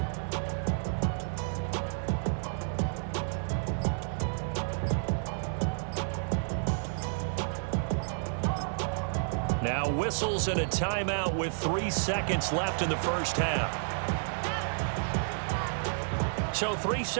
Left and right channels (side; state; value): left; silent; 57 dB below the other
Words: Now whistles and a timeout with 3 seconds left in the first half. So 3